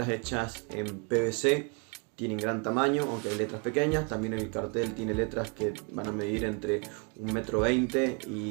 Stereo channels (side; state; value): left; quieter; 34.1 dB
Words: hechas en PVC. Tienen gran tamaño, aunque hay letras pequeñas. También el cartel tiene letras que van a medir entre 1,20 m